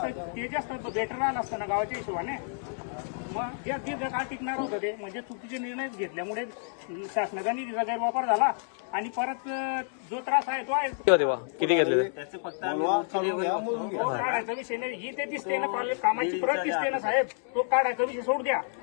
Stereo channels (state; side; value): silent; right; 58 dB below the other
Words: ते जास्त बेटर आलं असतं ना गावाच्या हिशोबाने. मग जे दीर्घकाळ टिकणार होतं ते म्हणजे चुकीचे निर्णय घेतल्यामुळे शासनाचा निधीचा गैरवापर झाला आणि परत जो त्रास आहे तो आहे. किती घेतले? त्याचे फक्त आम्ही काढायचा विषय नाही. ही ते दिसते ना कामाची प्रत दिसते ना साहेब, तो काढायचा विषय सोड द्या.